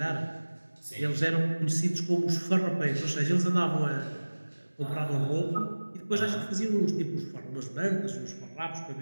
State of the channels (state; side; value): inverted; both; correlation -1.00